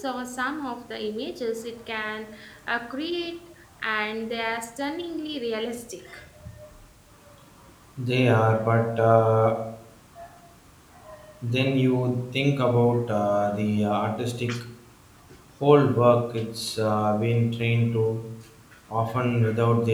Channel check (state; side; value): identical; both; correlation 1.00